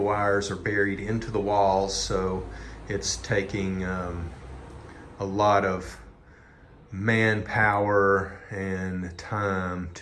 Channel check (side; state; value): both; identical; correlation 1.00